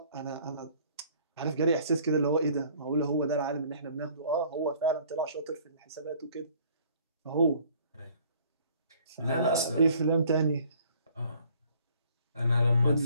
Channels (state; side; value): inverted; both; correlation -0.57